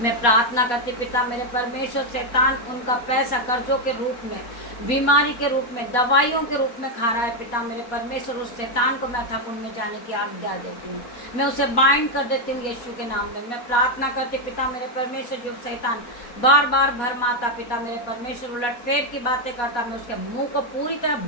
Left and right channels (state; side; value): late; right; 4.2 ms